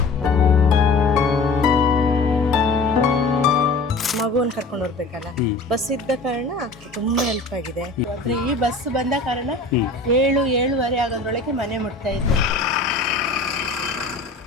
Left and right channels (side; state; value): right; quieter; 3.4 dB